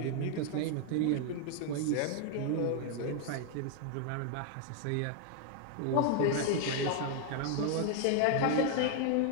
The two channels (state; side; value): different; both; correlation 0.00